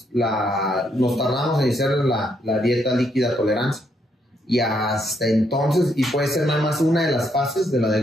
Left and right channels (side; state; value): both; normal; correlation 0.75